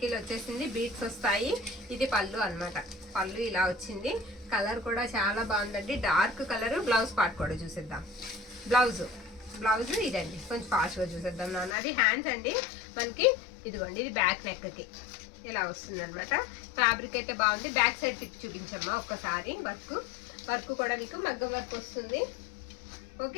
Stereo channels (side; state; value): right; drops out; at 11.8 s